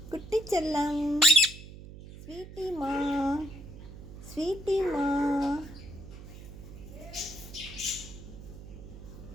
குட்டி செல்லம், ஸ்வீட்டிமா, ஸ்வீட்டிமா.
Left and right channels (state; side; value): noise; right; hum, 14 dB below the sound